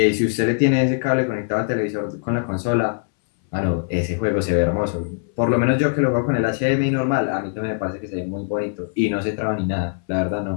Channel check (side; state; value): right; silent; 62 dB below the other